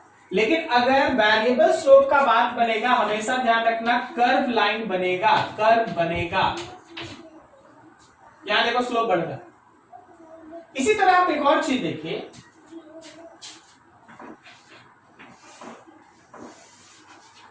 लेकिन अगर वेरिएबल स्लोप का बात बनेगा, हमेशा ध्यान रखना कर्व लाइन बनेगा, कर्व बनेगा। यहां देखो स्लोप बढ़ रहा है। इसी तरह आप एक और चीज देखिए,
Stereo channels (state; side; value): identical; both; correlation 1.00